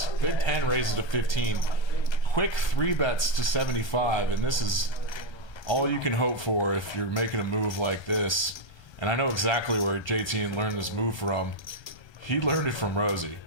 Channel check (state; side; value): late; right; 1.3 ms